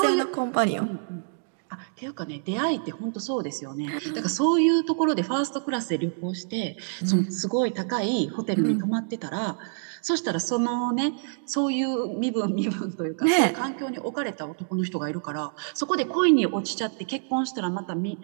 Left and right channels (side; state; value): left; silent; digital silence